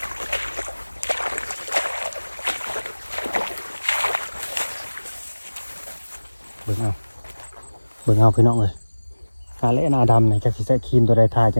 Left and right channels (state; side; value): inverted; both; correlation -1.00